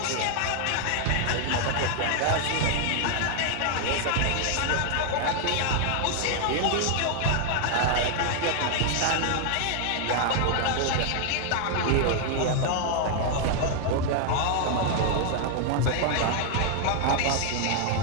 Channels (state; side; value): different; both; correlation 0.00